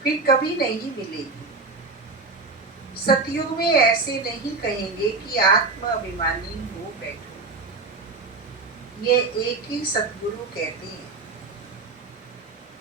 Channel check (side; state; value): left; quieter; 4.0 dB